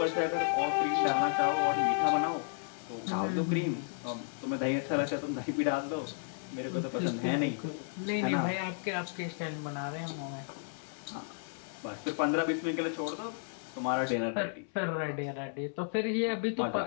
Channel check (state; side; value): silent; right; 56 dB below the other